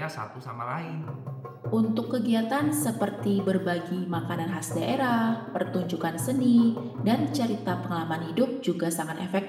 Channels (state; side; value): identical; both; correlation 1.00